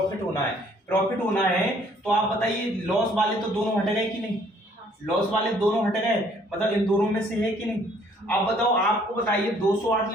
होना है, प्रॉफिट होना है तो आप बताइए लॉस वाले तो दोनों हट गए कि नहीं, लॉस वाले दोनों हट गए, मतलब इन दोनों में से है कि नहीं। अब बताओ आपको बताइए 208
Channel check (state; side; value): normal; both; correlation 0.61